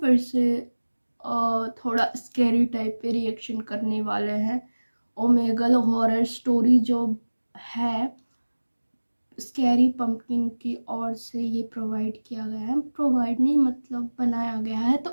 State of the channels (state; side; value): inverted; both; correlation -1.00